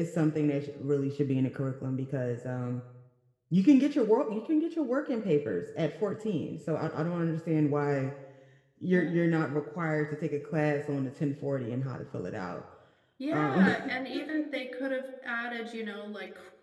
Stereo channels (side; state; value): both; identical; correlation 1.00